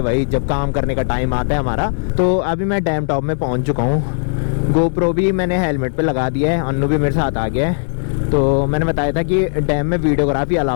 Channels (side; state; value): right; silent; digital silence